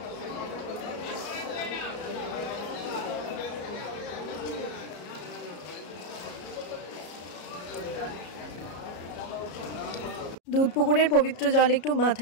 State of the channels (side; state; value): right; late; 33 ms